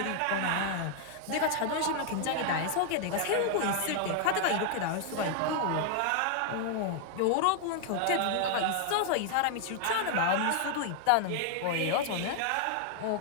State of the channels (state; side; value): different; both; correlation 0.00